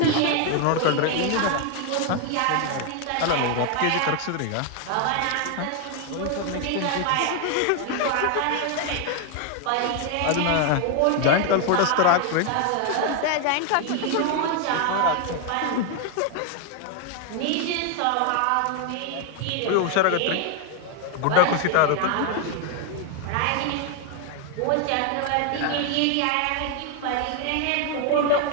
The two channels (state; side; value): different; both; correlation 0.01